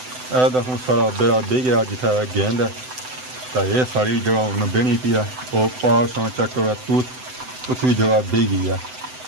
हूँ सारा बेरा बह गया जिथे गेंद है ਤਾਂ ਇਹ ਸਾਰੀ ਜਗ੍ਹਾ ਹੁਣ ਬਹਿਣੀ ਪਈ ਆ ਉਹ ਪਾਸਾਂ ਚੱਕ ਕਰ ਤੂਤ ਉੱਥੇ ਵੀ ਜਗ੍ਹਾ ਬਹਿ ਗਈ ਆ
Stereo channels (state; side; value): late; left; 7.9 ms